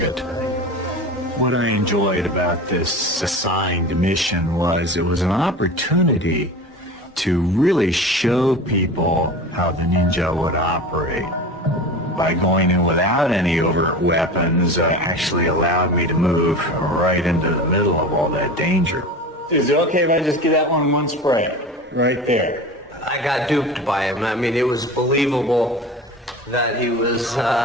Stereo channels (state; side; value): normal; both; correlation 0.33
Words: What I enjoyed about this assigned mission was it was an opportunity to really show people how the ninja would operate. By going in without any overt weapons actually allowed me to move right into the middle of all that danger. Is it okay if I just get that one spray? Right there. I got duped by him. I mean, it was believable that he was